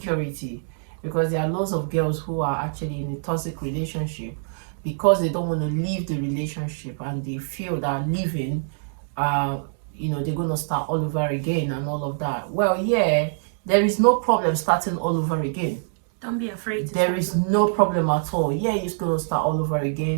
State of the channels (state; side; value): silent; left; digital silence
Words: because there are lots of girls who are actually in a toxic relationship because they don't want to leave the relationship and they feel that leaving they're going to start all over again and all of that. Well, yeah, there is no problem starting all over again. Don't be afraid. There is no problem at all. Yeah, you're going to start all over